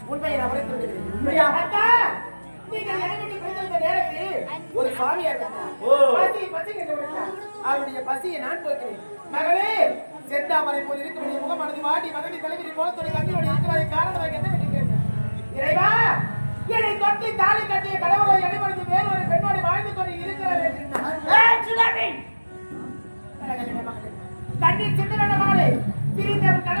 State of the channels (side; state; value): both; inverted; correlation -1.00